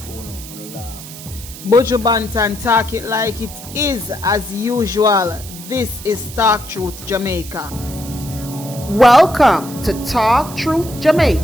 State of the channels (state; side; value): noise; right; hiss, 14 dB below the sound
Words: for you, and laugh. Buju Banton talk it like it is as usual. This is Talk Truth Jamaica. Welcome to Talk Truth